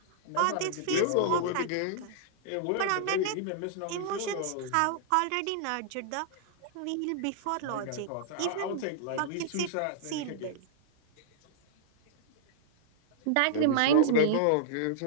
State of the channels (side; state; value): both; different; correlation -0.01